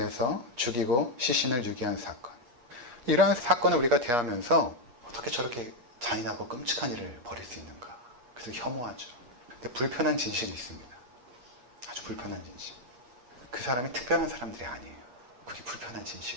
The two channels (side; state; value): left; late; 8.5 ms